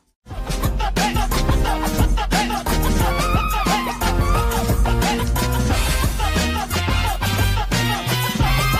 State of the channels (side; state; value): both; identical; correlation 1.00